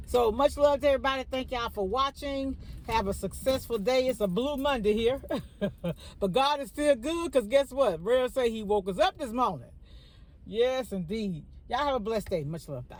So much love to everybody. Thank y'all for watching. Have a successful day. It's a blue Monday here. But God is still good, because guess what? Rare say he woke us up this morning. Yes, indeed. Y'all have a blessed day. Much love.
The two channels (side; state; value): both; identical; correlation 1.00